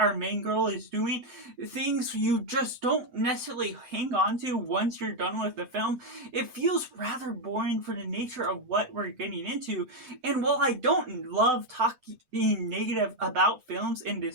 main girl is doing, things you just don't necessarily hang on to once you're done with the film. It feels rather boring for the nature of what we're getting into. And while I don't love talking negative about films in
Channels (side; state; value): left; late; 8.8 ms